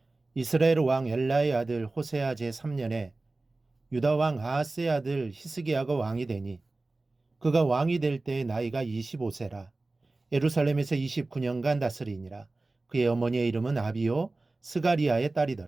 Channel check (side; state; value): left; quieter; 3.2 dB